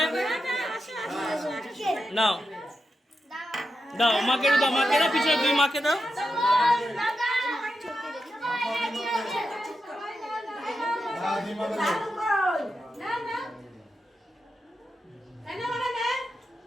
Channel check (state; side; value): normal; both; correlation 0.88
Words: নাও দাও, মাকে দাও, মাকে দাও, পিছনে তুই মাকে দাও।